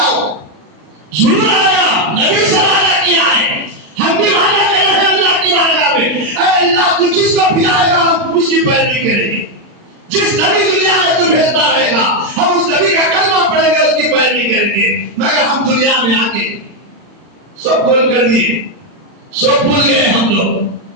وہ ضرور آئے گا. نبی سے وعدہ کیا ہے, ہم بھی وعدہ کر رہے ہیں اللہ کی بارگاہ میں. اے اللہ, تو جس کو بھیجائے گا ہم اس کی پیروی کریں گے. جس نبی دنیا میں تو بھیجتا رہے گا ہم اس نبی کا کلمہ پڑھیں گے, اس کی پیروی کریں گے. مگر ہم دنیا میں آ کے سب بول کر دیے, سب بھول گئے ہم لوگ.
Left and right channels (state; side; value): late; left; 39 ms